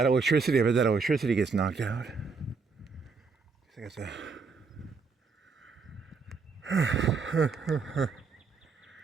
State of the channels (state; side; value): quieter; left; 5.0 dB